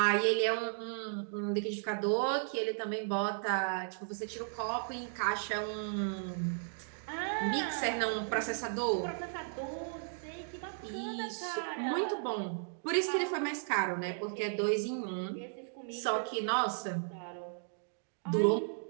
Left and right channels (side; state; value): left; silent; digital silence